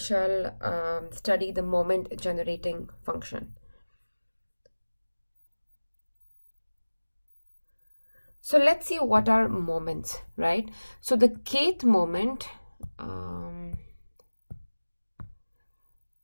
study the moment generating function. So let's see what are moments, right? So the kth moment,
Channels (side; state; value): both; inverted; correlation -1.00